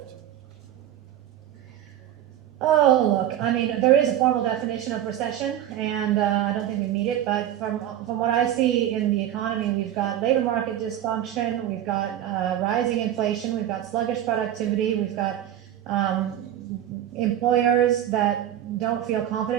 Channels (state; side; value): quieter; left; 11.5 dB